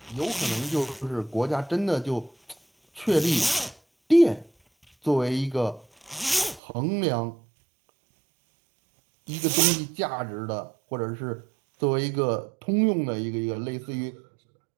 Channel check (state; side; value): drops out; left; at 6.6 s